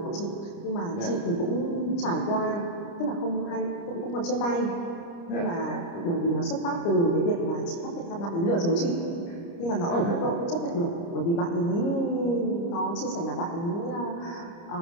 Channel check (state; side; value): late; right; 29 ms